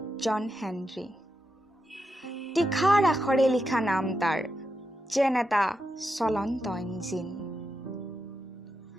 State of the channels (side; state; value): both; normal; correlation 0.86